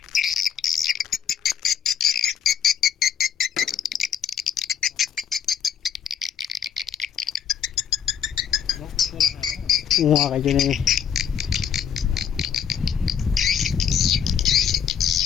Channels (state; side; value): quieter; right; 8.2 dB